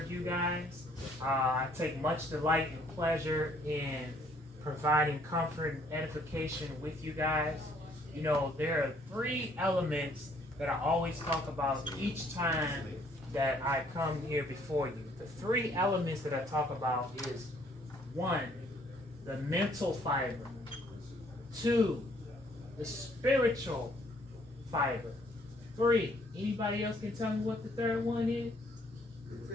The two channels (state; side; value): normal; both; correlation 0.63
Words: you guys. I take much delight and pleasure in providing comfort and edification with you guys. You know, there are three elements that I always talk about each time that I come here before you. The three elements that I talk about is one, the mental fiber; two, the spiritual fiber; three, anybody else can tell me what the third one is?